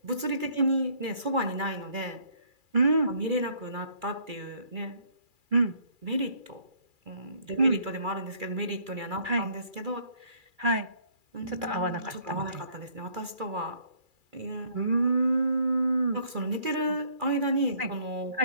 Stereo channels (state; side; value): late; left; 2.4 ms